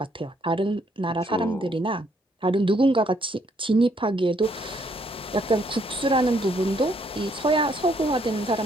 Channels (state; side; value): normal; both; correlation 0.69